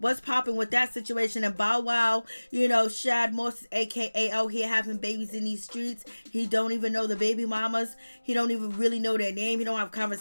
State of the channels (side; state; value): both; inverted; correlation -1.00